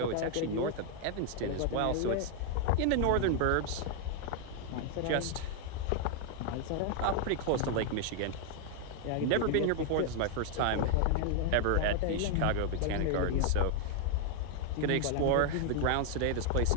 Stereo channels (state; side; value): different; both; correlation 0.00